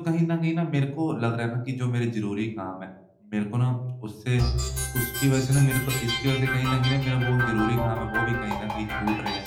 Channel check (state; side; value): identical; both; correlation 1.00